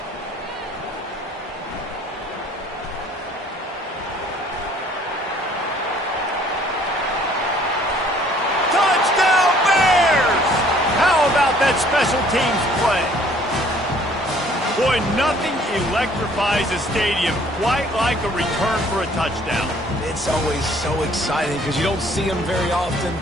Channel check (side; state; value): both; normal; correlation 0.58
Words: That special teams play. Boy, nothing electrifies a stadium quite like a return for a touchdown. It's always so exciting because you don't see them very often.